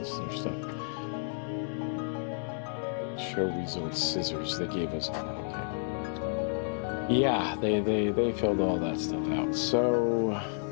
stuff. Show results scissors, they gave us. Okay. Yeah, they filled all that stuff out. So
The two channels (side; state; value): right; silent; 57 dB below the other